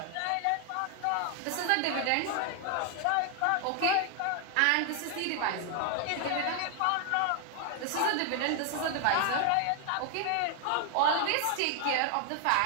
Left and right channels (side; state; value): both; different; correlation 0.00